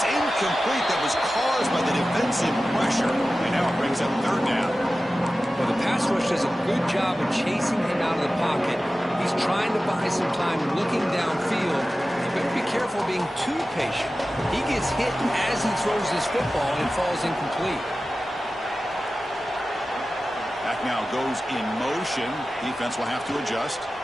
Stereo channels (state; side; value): normal; both; correlation 0.95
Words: incomplete. That was caused by the defensive pressure. And now it brings up third down. Well, the pass rush does a good job of chasing him out of the pocket. He's trying to buy some time looking downfield. You better be careful being too patient. He gets hit as he throws his football and falls incomplete. Back now goes in motion. Defense will have to adjust.